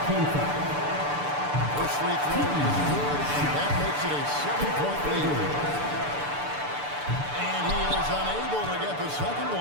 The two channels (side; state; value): left; late; 6.8 ms